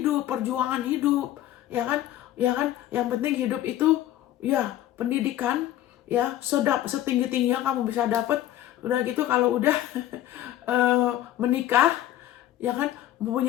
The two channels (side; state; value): right; quieter; 13.0 dB